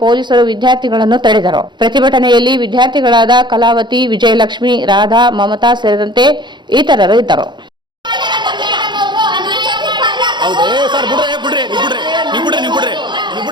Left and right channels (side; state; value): left; late; 0.22 ms